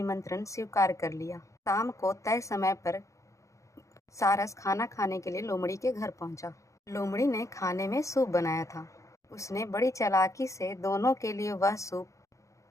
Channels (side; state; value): right; late; 0.15 ms